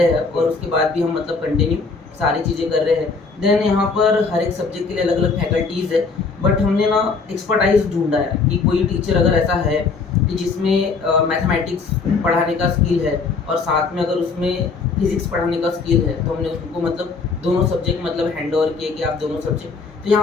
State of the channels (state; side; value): quieter; right; 4.5 dB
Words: हैं और उसके बाद भी हम कंटिन्यू सारी चीज़ें कर रहे हैं। देन यहाँ पर हर एक सब्जेक्ट के लिए अलग अलग फैकल्टीज़ है, बट हमने एक्सपर्टाइज ढूंढा है कि कोई टीचर अगर ऐसा है कि जिसमें मैथमेटिक्स पढ़ाने का स्किल है और साथ में अगर उसमें फिजिक्स पढ़ाने का स्किल है, तो हमने उनको दोनों सब्जेक्ट हैंड ओवर किए कि आप दोनों सब्जेक्ट। तो